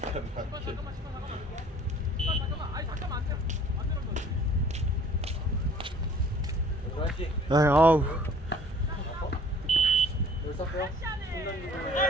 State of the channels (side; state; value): both; normal; correlation 0.53